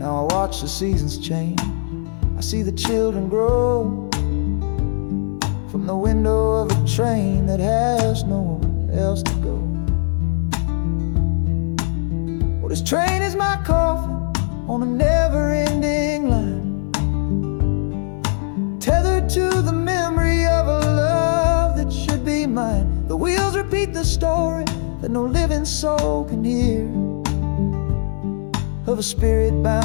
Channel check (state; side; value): silent; right; 66 dB below the other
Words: I watch the seasons change, I see the children grow, from the window of a train that has nowhere else to go. Well, this train is my coffin on a never-ending line, tethered to the memory of a love that should be mine. The wheels repeat the story that no living soul can hear, of a spirit